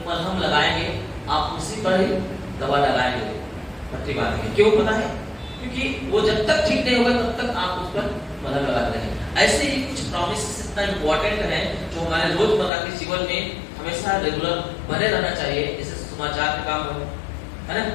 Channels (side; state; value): right; drops out; at 12.7 s